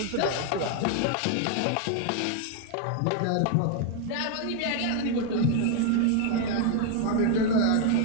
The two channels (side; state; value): both; different; correlation 0.00